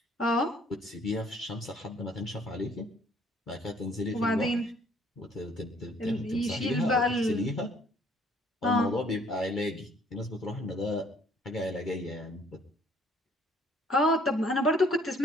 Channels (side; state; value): both; normal; correlation 0.60